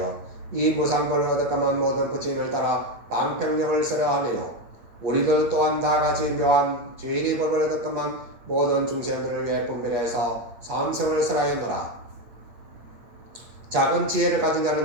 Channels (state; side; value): late; left; 8.8 ms